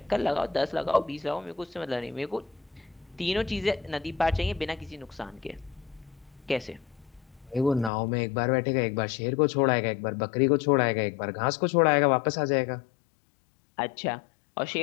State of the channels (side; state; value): right; drops out; at 7.9 s